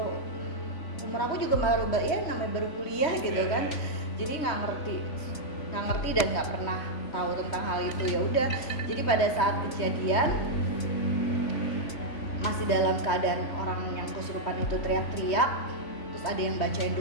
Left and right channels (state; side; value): late; right; 3.2 ms